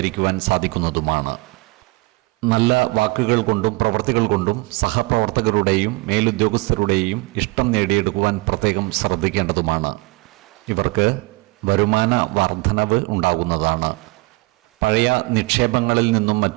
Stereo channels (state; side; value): quieter; left; 24.0 dB